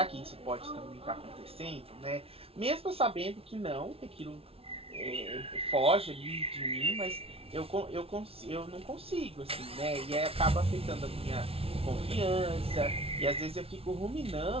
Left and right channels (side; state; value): left; late; 0.28 ms